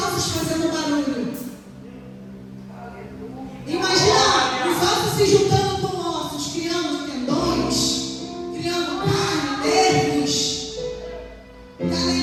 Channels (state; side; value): identical; both; correlation 1.00